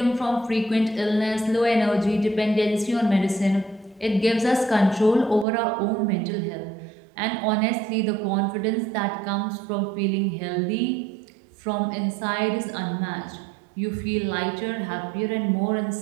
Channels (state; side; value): drops out; left; at 5.5 s